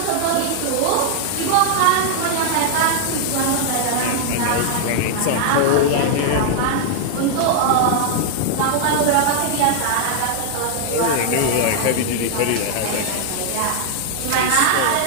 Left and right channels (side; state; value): both; different; correlation 0.00